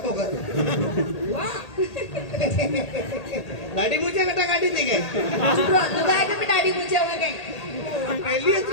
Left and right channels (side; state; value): right; late; 1.8 ms